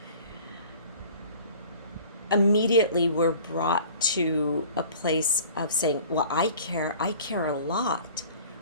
immediately we're brought to a place of saying, well, I care a lot,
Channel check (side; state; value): both; inverted; correlation -0.47